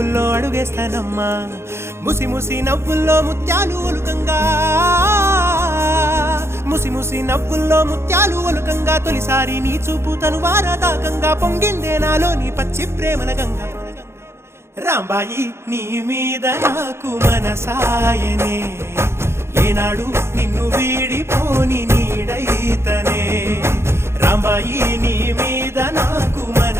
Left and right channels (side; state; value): left; late; 0.12 ms